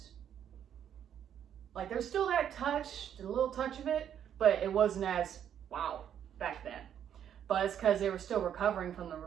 Like there's still that touch, a little touch of it, but it wasn't as wow back then. But it's because they were still recovering from the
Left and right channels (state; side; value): quieter; left; 9.4 dB